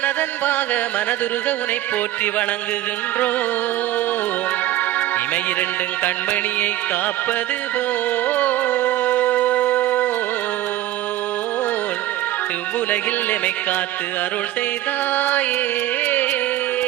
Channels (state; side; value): quieter; left; 14.4 dB